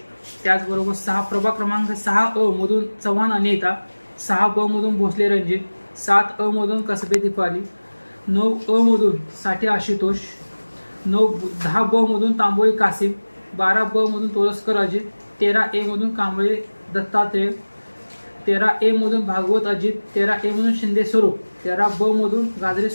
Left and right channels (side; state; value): both; inverted; correlation -1.00